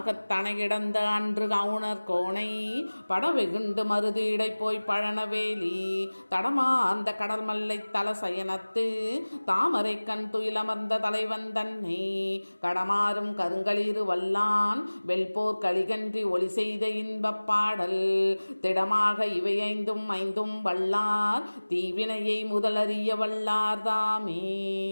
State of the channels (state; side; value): inverted; both; correlation -1.00